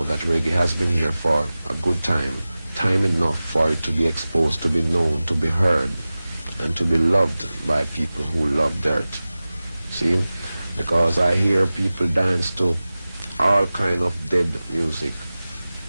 that reggae has been here for a good time enough for it to be exposed, to be known, to be heard, and to be loved by people who love dirt. See? Because I hear people dance to all kind of dead music.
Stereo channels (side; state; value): both; inverted; correlation -0.97